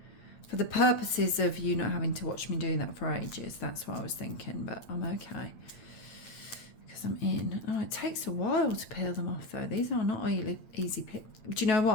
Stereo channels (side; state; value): right; late; 9.2 ms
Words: For the purposes of you not having to watch me doing that for ages, that's what I was thinking, but I'm okay. Because I'm in. Oh, it takes a while to peel them off though. These are not easy peel. Do you know